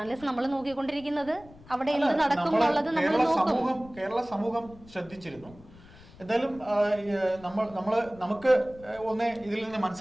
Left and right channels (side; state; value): left; noise; rumble, 22 dB below the sound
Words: നമ്മൾ നോക്കിക്കൊണ്ടിരിക്കുന്നത് അവിടെ എന്ത് നടക്കും എന്നുള്ളത് നമ്മൾ നോക്കും. കേരള സമൂഹം ശ്രദ്ധിച്ചിരുന്നു. എന്തായാലും നമുക്ക് ഒന്നേ ഇതിൽ നിന്ന്